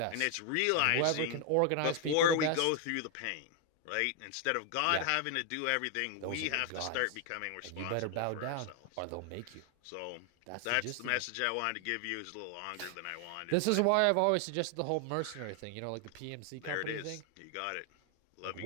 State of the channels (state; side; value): different; both; correlation 0.00